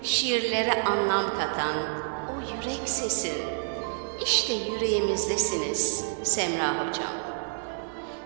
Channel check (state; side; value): silent; left; 59 dB below the other